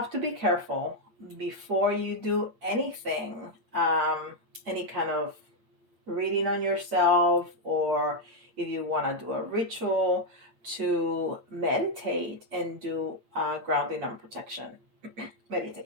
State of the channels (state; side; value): late; left; 8.8 ms